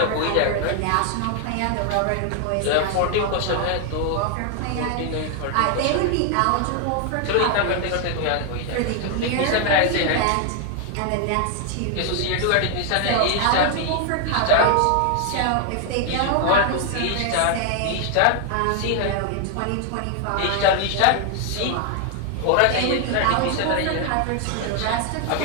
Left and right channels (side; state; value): both; different; correlation 0.00